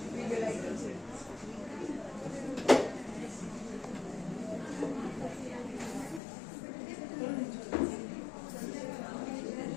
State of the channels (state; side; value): drops out; right; at 6.2 s